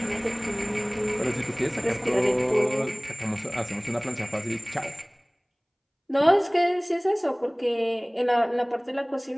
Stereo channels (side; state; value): both; identical; correlation 1.00